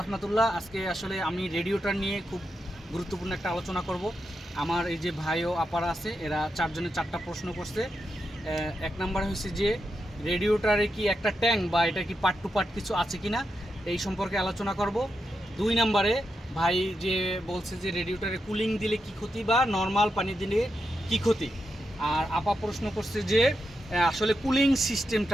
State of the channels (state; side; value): normal; both; correlation 0.86